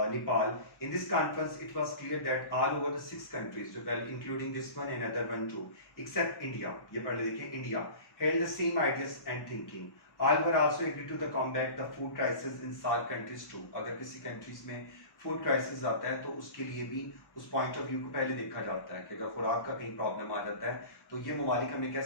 Nepal. In this conference, it was clear that all over the 6 countries, well, including this one and other one too, except India, ये पढ़ लेंगे, India held the same ideas and thinking. All were also agreed to the combat the food crisis in SAARC countries too. अगर किसी countries में food crisis आता है तो उसके लिए भी उस पॉइंट ऑफ व्यू को पहले देखा जाता है कि अगर खुराक का कहीं प्रॉब्लम आ जाता है तो ये ममालिक हमें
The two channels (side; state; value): right; late; 1.1 ms